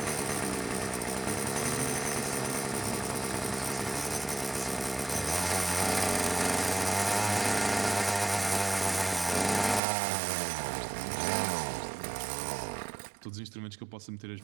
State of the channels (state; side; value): drops out; left; at 9.8 s